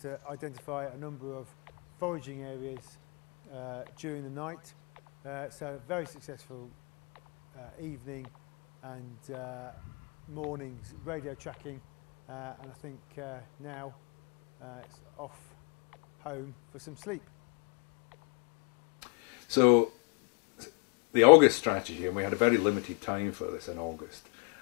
to identify a number of foraging areas during the night, so very successful evening and morning's radio tracking, and I think now it's off home for some sleep. So the August strategy, and we had a very limited time for this in August,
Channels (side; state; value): right; quieter; 32.9 dB